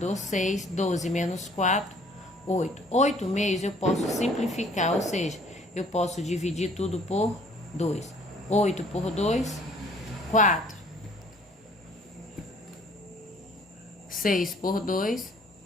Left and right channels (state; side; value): normal; both; correlation 0.57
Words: 6. 12 menos 4, 8. 8/2 eu posso simplificar, ou seja, eu posso dividir tudo por 2. 8 por 2, 4. 6 por 2,